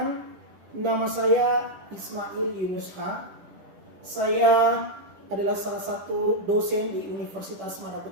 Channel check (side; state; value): left; late; 10 ms